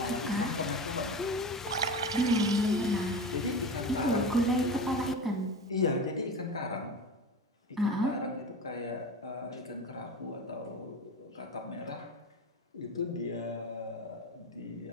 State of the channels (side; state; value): both; normal; correlation 0.28